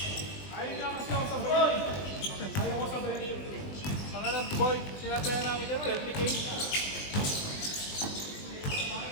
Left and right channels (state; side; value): late; right; 20 ms